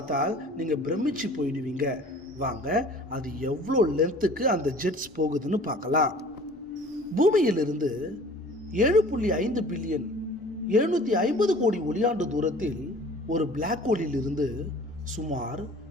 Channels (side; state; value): both; normal; correlation 0.47